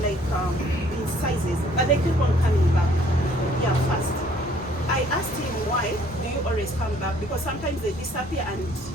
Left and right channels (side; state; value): both; normal; correlation 0.60